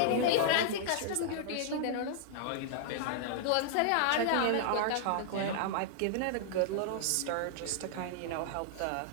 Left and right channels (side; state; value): both; different; correlation -0.01